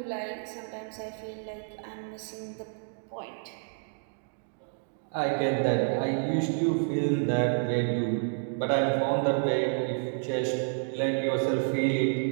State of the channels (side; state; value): left; silent; digital silence